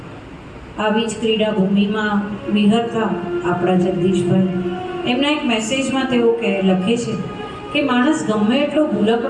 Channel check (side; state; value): both; identical; correlation 1.00